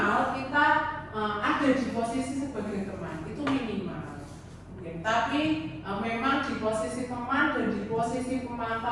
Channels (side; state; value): both; identical; correlation 1.00